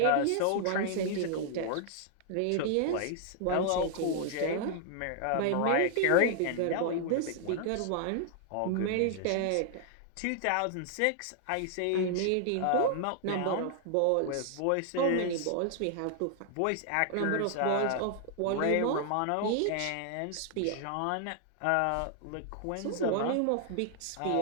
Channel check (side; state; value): both; different; correlation 0.00